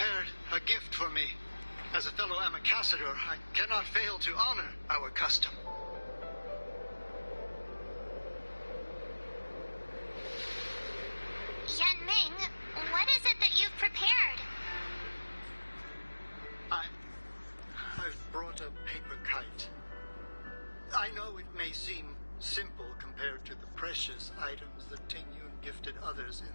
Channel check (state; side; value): inverted; both; correlation -1.00